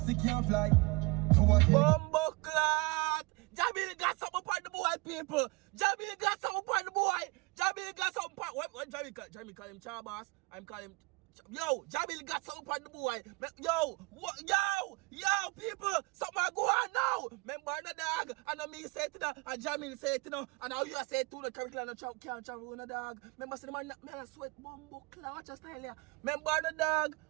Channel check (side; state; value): left; quieter; 26.3 dB